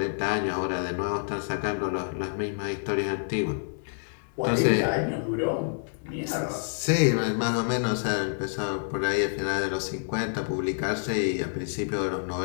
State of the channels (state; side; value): silent; right; 59 dB below the other